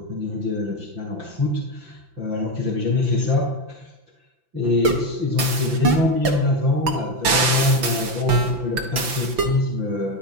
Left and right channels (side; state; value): left; late; 5.9 ms